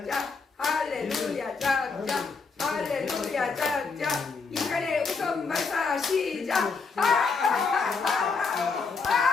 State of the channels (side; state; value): right; quieter; 4.7 dB